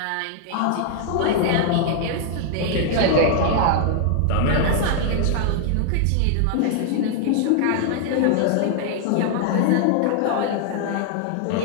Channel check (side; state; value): both; different; correlation 0.00